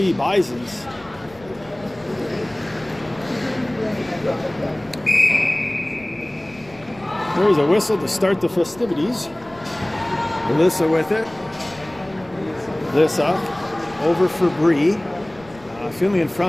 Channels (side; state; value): left; noise; rumble, 23 dB below the sound